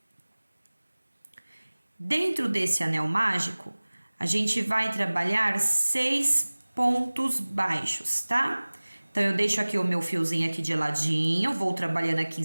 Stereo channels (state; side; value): inverted; both; correlation -1.00